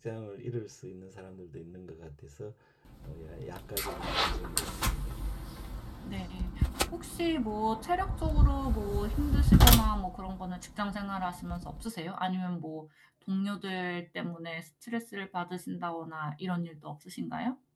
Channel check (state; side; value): identical; both; correlation 1.00